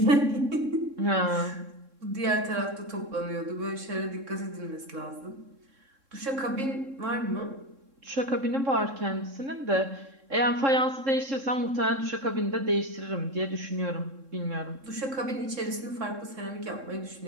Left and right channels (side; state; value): left; late; 3.7 ms